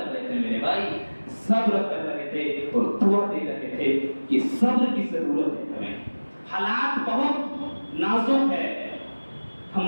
رہے تھے میرے بھائی، صبر کر رہے تھے اور دعا دے رہے تھے کہ صبر کی ضرورت ہے ہمیں، حالات بہت نازک ہے،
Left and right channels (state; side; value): inverted; both; correlation -1.00